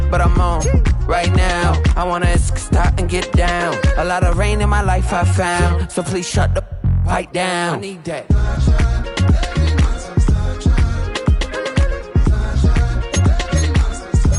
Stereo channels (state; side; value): identical; both; correlation 1.00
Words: but I'm on right now. I wanna stop and get down. A lot of rain in my life I found, so please shut the pipe down. I need that.